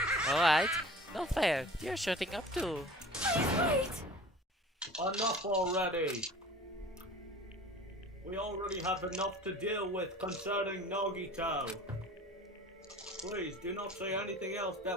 Alright, no fair. You're shutting up too. Wait! Enough already! We already have enough to deal with concerning Nagito. Please do not say anything else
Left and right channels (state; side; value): normal; both; correlation 0.43